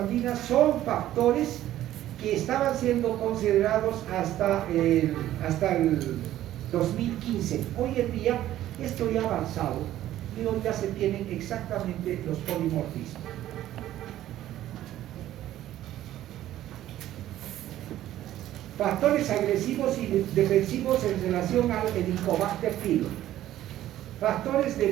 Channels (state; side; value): quieter; left; 13.3 dB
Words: son factores que estaban siendo considerados hasta el 2015. Hoy en día esto ya ha avanzado y hoy ya se tienen exactamente los polimorfismos. Factores agresivos y defensivos en relación al Helicobacter pylori. Factores de